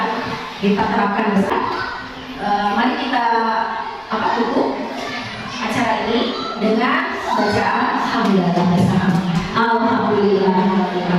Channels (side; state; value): both; identical; correlation 1.00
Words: kita terapkan besar. Mari kita tutup acara ini dengan bacaan Alhamdulillah.